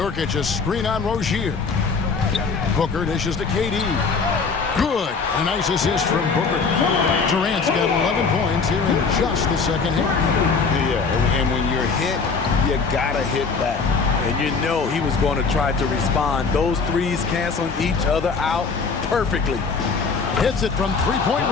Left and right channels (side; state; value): right; quieter; 4.9 dB